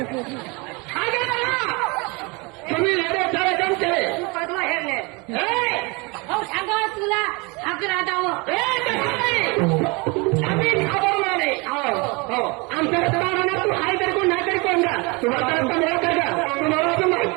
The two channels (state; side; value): quieter; left; 28.0 dB